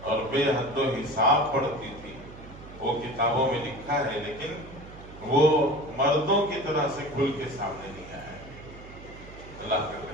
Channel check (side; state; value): right; noise; hum, 17 dB below the sound